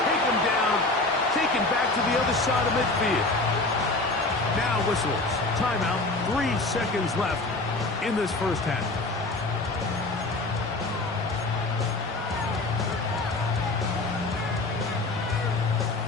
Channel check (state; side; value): quieter; right; 3.1 dB